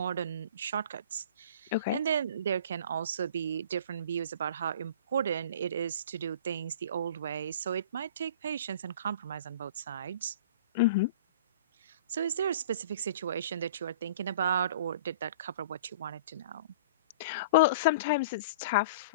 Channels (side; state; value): both; inverted; correlation -0.42